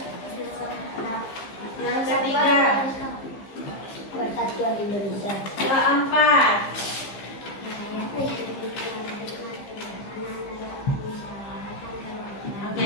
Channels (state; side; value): late; right; 15 ms